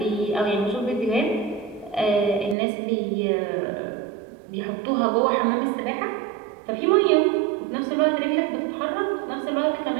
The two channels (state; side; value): drops out; left; at 2.6 s